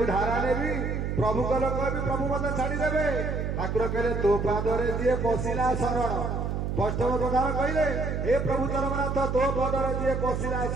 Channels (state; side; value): noise; right; hum, 2 dB below the sound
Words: धारा नेबी प्रभु को कहबी प्रभु मते छाड़ी देबे ठाकुर कहले तो पादरे जे पसिला शरण वैष्णव प्रधान कहले हे प्रभु जगन्नाथ तो पादरे जे पसिला